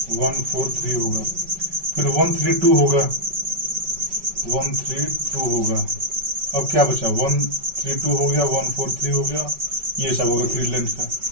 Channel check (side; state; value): left; late; 5.2 ms